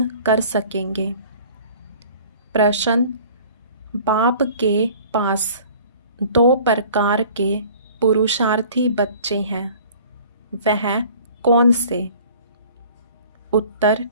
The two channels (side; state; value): both; inverted; correlation -0.48